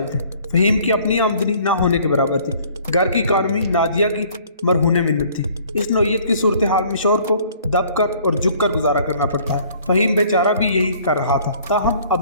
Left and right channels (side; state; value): both; inverted; correlation -0.56